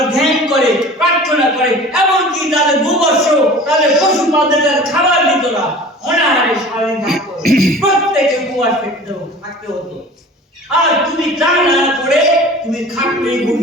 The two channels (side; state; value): both; normal; correlation 0.41